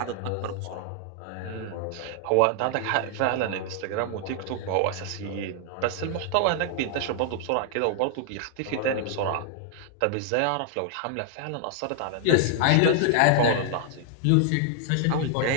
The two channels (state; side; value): different; both; correlation 0.00